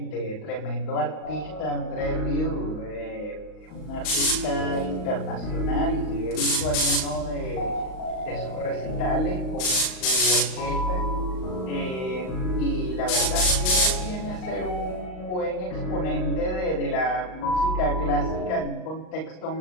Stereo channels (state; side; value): late; right; 38 ms